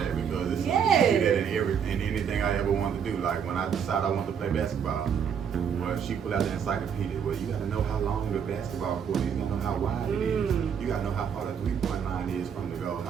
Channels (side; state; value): left; quieter; 7.5 dB